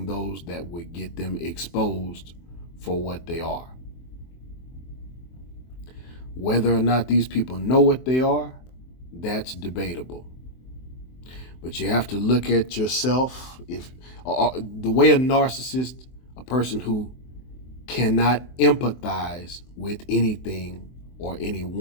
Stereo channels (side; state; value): right; late; 23 ms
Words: those that would get them exposed for what they are. Whether or not these people know what they are, that's debatable. But you have to look at yourself. If the way a narcissist, a person who cannot empathize with anything or